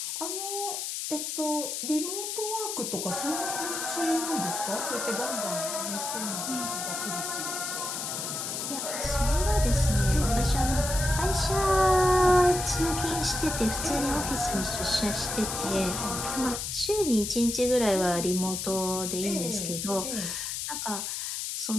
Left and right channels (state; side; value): noise; left; hiss, 4 dB below the sound